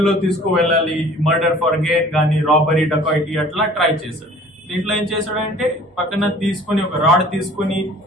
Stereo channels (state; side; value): normal; both; correlation 0.49